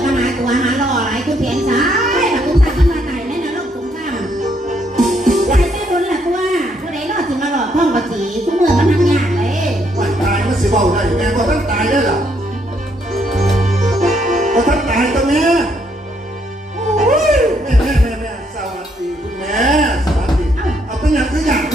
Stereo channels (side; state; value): both; normal; correlation 0.72